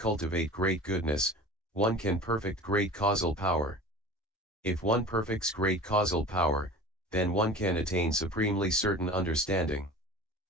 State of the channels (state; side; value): normal; both; correlation 0.38